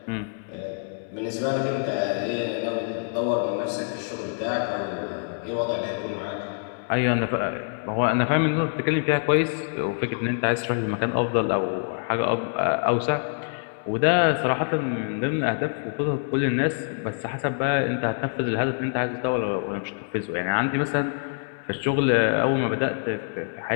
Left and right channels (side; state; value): right; silent; 61 dB below the other